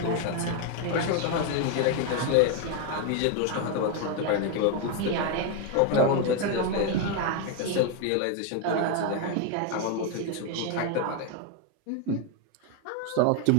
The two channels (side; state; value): both; different; correlation 0.01